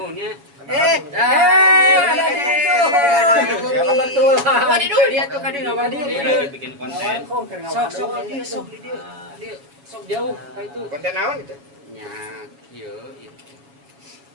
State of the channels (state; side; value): late; left; 7.1 ms